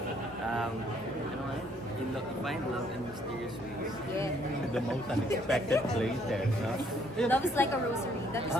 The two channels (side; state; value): both; normal; correlation 0.66